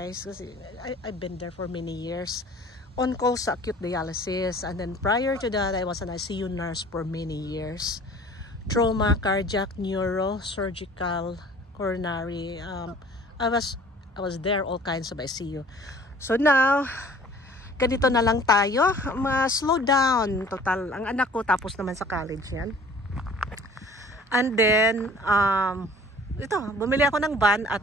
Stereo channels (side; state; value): both; normal; correlation 0.49